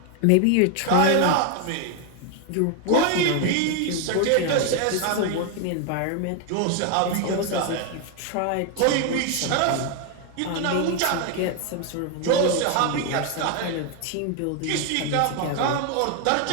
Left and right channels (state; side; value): different; both; correlation 0.01